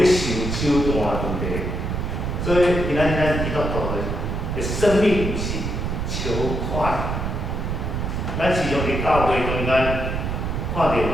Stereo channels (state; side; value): noise; right; rumble, 2 dB below the sound